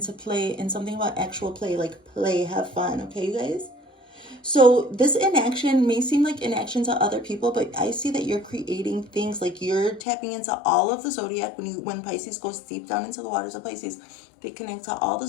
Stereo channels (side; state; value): right; drops out; at 10.0 s